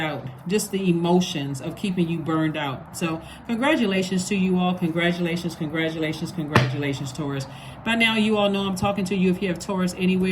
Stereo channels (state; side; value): identical; both; correlation 1.00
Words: Just the emotions of keeping you burned out. So congratulations to you all. Congratulations, congratulations, congratulations, Taurus. By now, you all know I'm talking to you if you have Taurus